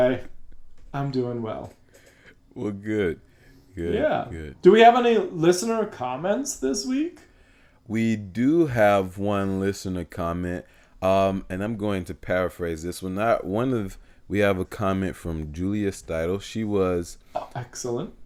I'm doing well. Well, good, good, Yeah. good. Do we have any listener comments this week? We do have one listener comment, and I'm going to paraphrase this one. Not one of We have a comment from Julia Steidel. She was Oh, excellent.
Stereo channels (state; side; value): identical; both; correlation 1.00